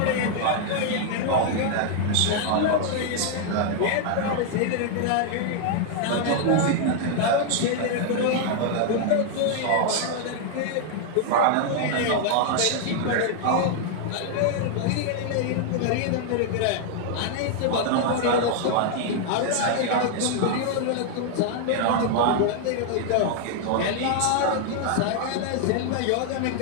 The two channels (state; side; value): different; both; correlation 0.00